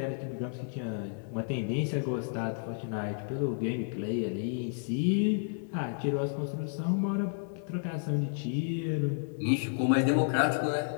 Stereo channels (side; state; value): right; silent; digital silence